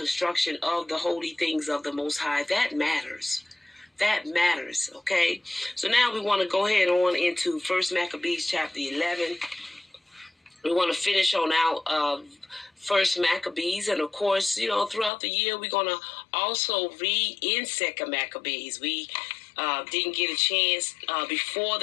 of the holy things of the Most High, that matters. That matters, okay? So now we want to go ahead on into 1 Maccabees chapter 11. We want to finish on out 1 Maccabees. And of course, throughout the year, we're going to also read in 2 Maccabees. We didn't get a chance before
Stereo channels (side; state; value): right; drops out; at 15.1 s